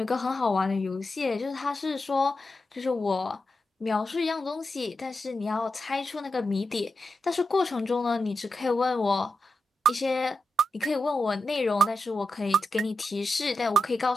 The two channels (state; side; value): normal; both; correlation 0.88